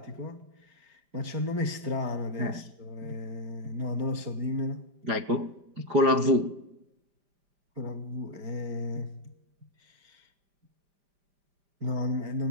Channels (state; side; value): late; left; 5.0 ms